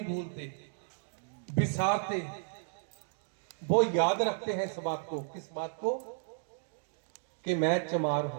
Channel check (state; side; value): silent; left; digital silence